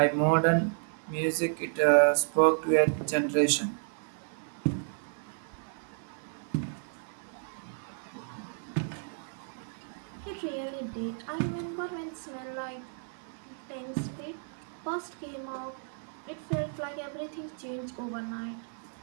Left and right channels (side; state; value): left; silent; digital silence